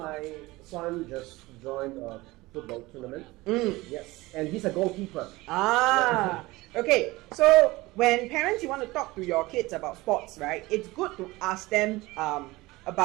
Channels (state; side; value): quieter; left; 20.5 dB